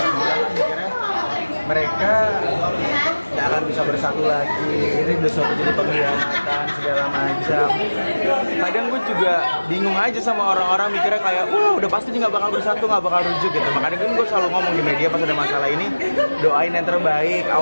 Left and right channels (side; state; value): both; inverted; correlation -1.00